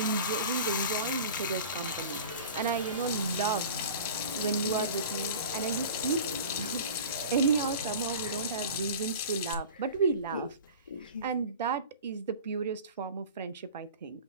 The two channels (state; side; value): inverted; both; correlation -0.37